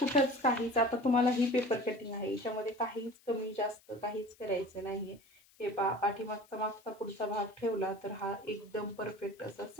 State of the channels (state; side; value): noise; left; hiss, 29 dB below the sound